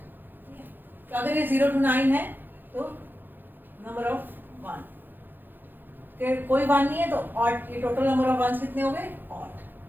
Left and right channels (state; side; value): late; left; 0.091 ms